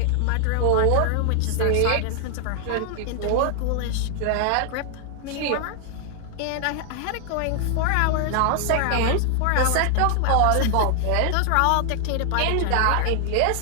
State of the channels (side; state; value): both; different; correlation 0.00